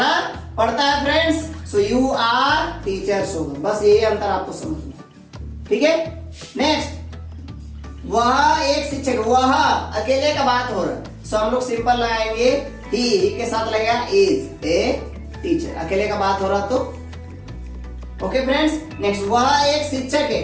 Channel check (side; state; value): both; identical; correlation 1.00